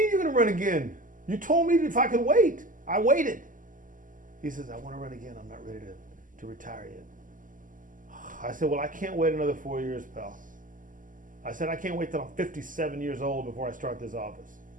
you're going to run again? You told me if I could wait. I waited." He says, "I want to run again. I'm not ready to retire yet." I said, "Well, I can't wait another 4 years, pal." I said, "I can't wait till I'm 57 years old before I start this office."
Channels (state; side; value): late; left; 0.38 ms